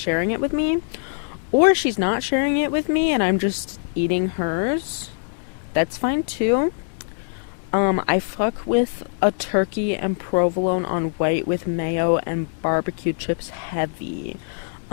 it with me. Or she's not sharing it with me and I'm just eating hers. That's fine too. I fuck with a turkey and provolone on white with mayo and barbecue chips heavy.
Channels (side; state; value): right; silent; 64 dB below the other